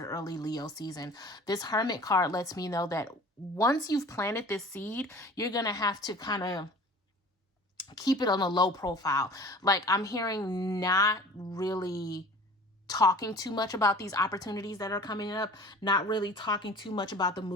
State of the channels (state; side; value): normal; both; correlation 0.44